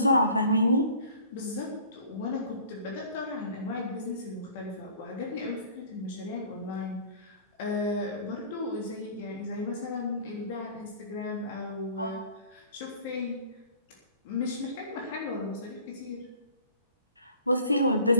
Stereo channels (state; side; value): inverted; both; correlation -0.49